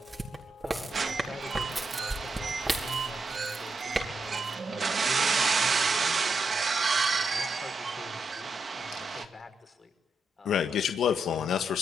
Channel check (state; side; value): normal; both; correlation 0.83